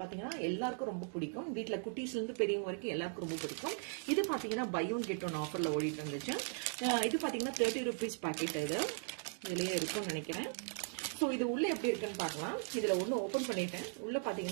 பாத்தீங்கன்னா எல்லாருக்கும் ரொம்ப பிடிக்கும். வீட்டுல குட்டீஸ்ல இருந்து பெரியவங்க வரைக்கும் எல்லாருக்கும் ரொம்ப பிடிக்கும். இது பாத்தீங்கன்னா பை ஒன் கெட் ஒன் ஆஃபர்ல ஓடிட்டு இருந்துச்சு. இது பாத்தீங்கன்னா 30 rupees பாக்கெட். இதுலயே இருக்கும்னு நினைக்கிறேன். ஸோ இது உள்ள எப்படி இருக்குன்னு பார்க்கலாம். இதுல ஒன்று ஓப்பன் பண்ணிட்டேன். உள்ள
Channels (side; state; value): left; silent; 52 dB below the other